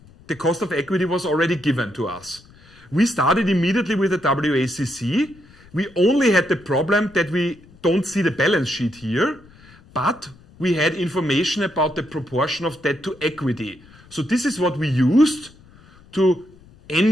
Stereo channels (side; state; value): left; noise; rumble, 25 dB below the sound